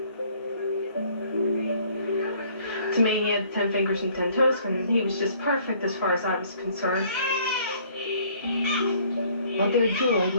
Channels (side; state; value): both; inverted; correlation -0.59